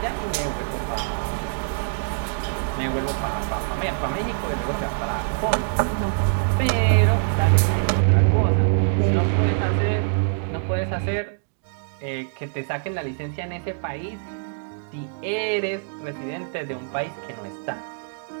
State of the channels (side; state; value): left; silent; digital silence